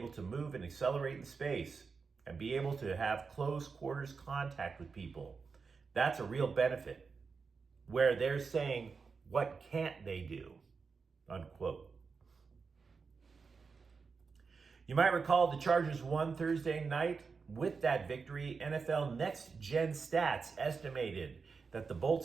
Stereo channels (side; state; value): left; quieter; 5.0 dB